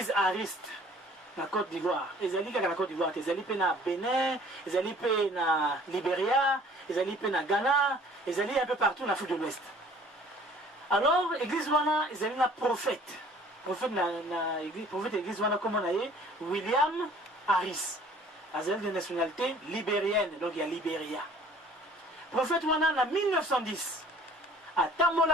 Ariste na Côte d'Ivoire. Ezali kaka na Côte d'Ivoire, ezali pe na Bénin, ezali pe na Libéria, ezali pe na Ghana, ezali un peu partout en Afrique de l'Ouest. Alors église wana ezali na prophète. Prophète église wana comme on a William Harris. Azali de nationalité libérienne, donc il y a Libéria. Prophète wana en 1910.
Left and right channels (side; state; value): both; normal; correlation 0.52